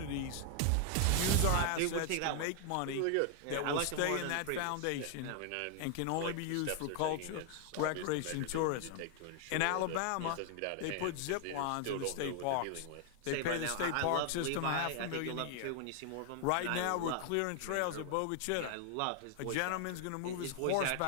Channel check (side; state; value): both; different; correlation 0.00